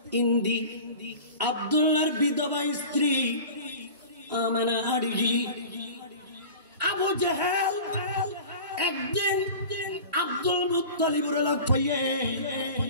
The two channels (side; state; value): both; inverted; correlation -0.37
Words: ইন্দি আব্দুল্লাহর বিধবা স্ত্রী আমানা আড়িগি আবু জাহেল একদিন আব্দুল মুত্তালিবের লোক পাইয়ে